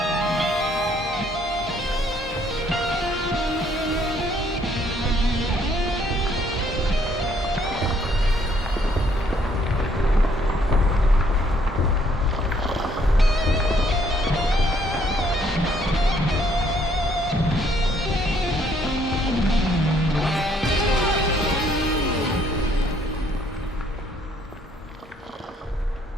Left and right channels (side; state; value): both; normal; correlation 0.66